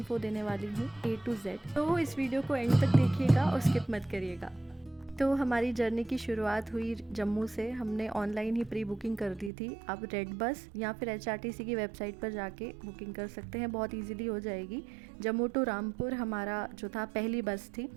देने वाली हूँ A to Z, तो इस वीडियो को एंड तक देखिएगा और स्किप मत करिएगा। तो हमारी जर्नी की शुरुआत हुई जम्मू से। हमने ऑनलाइन ही प्री बुकिंग कर दी थी। आप रेड बस या फिर HRTC की वेबसाइट पर जाके बुकिंग कर सकते हैं, बहुत इजीली हो जाएगी। जम्मू टू रामपुर हमारा जो था पहली बस थी,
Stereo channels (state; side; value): drops out; left; at 9.5 s